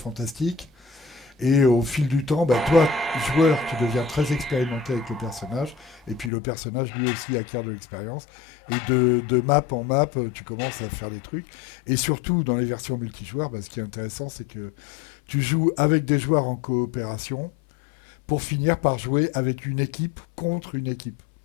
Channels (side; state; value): right; drops out; at 6.3 s